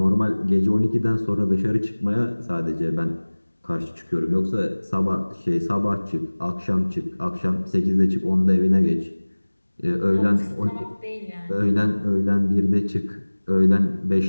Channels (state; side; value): inverted; both; correlation -1.00